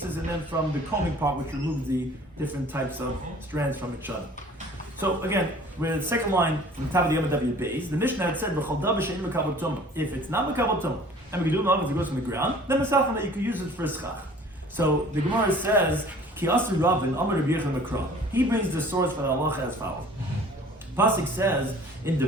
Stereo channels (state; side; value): normal; both; correlation 0.50